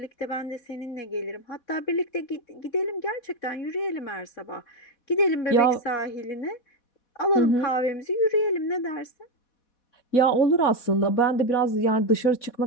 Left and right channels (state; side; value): late; right; 4.1 ms